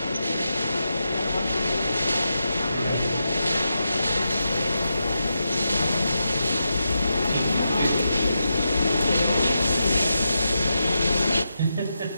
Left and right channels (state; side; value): inverted; both; correlation -0.87